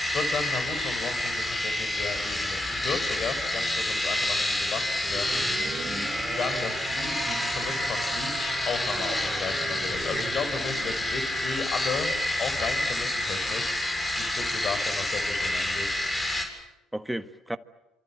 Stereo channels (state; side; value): normal; both; correlation 0.86